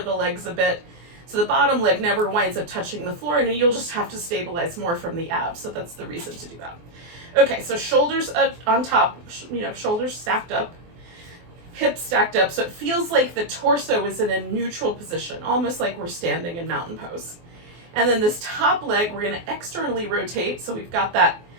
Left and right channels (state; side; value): late; left; 24 ms